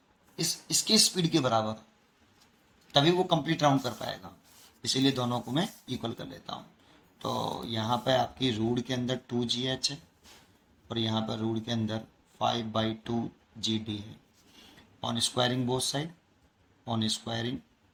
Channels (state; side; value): identical; both; correlation 1.00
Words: इसके स्पीड के बराबर, तभी वो कंप्लीट राउंड कर पाएगा। इसीलिए दोनों को मैं इक्वल कर लेता हूँ। तो यहाँ पे आपकी रूट के अंदर 2GH है और यहाँ पर रूट के अंदर 5/2GD है। On squaring both side, on squaring